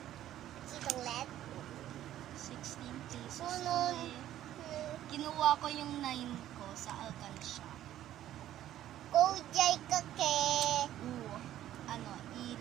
Sitong LED. 16 pesos. Sunod. Kinuha ko yung 9 ko sa Alcansya. Kujay ka ke.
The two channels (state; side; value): quieter; left; 12.6 dB